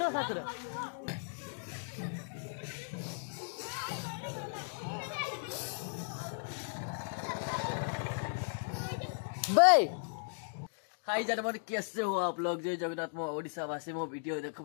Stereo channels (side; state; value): right; silent; digital silence